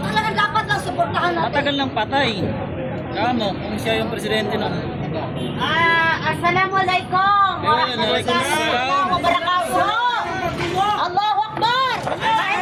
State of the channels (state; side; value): identical; both; correlation 1.00